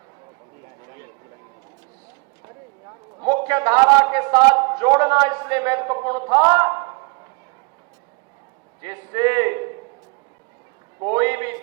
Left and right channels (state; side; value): quieter; left; 31.2 dB